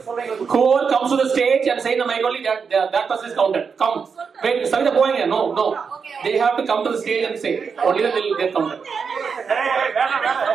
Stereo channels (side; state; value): left; quieter; 5.8 dB